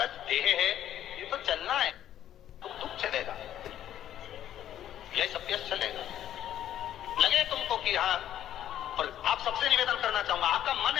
देह है, ये तो चलना है, दुख चलेगा, यह सब चलेगा। लगे तुमको कि हाँ, और आप सबसे निवेदन करना चाहूंगा, आपका मन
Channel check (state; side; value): quieter; right; 11.3 dB